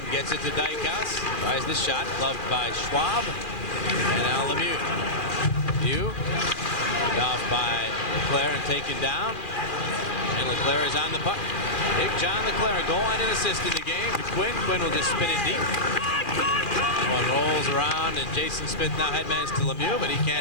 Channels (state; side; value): late; right; 2.4 ms